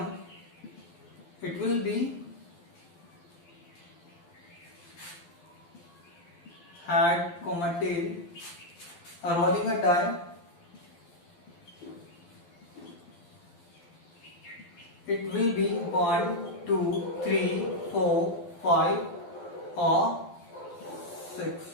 it will be head, tail. Rolling a die, it will be 1, 2, 3, 4, 5 or 6.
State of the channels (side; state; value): right; late; 12 ms